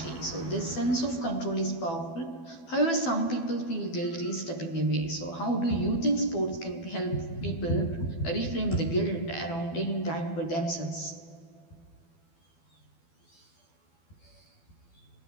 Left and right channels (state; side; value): late; right; 12 ms